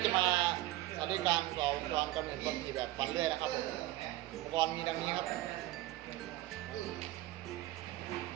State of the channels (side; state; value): left; quieter; 16.8 dB